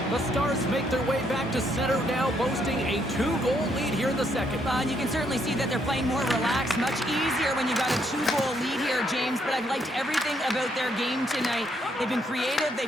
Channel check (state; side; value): normal; both; correlation 0.73